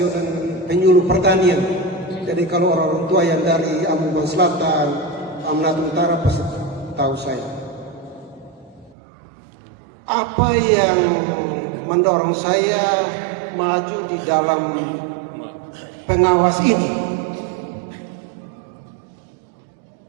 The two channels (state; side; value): drops out; left; at 9.0 s